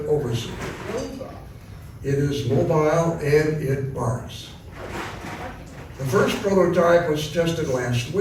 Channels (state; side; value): identical; both; correlation 1.00